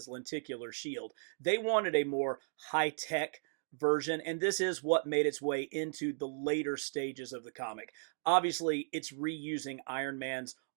lenticular shield. They wanted a more high-tech version, and this is what made its way into the later stages of the comic. Obviously, it's reusing Iron Man's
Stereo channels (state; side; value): silent; left; digital silence